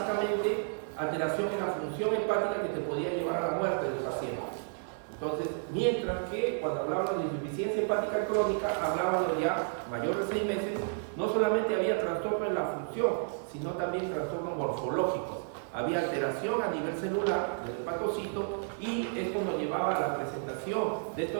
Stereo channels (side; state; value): left; silent; 57 dB below the other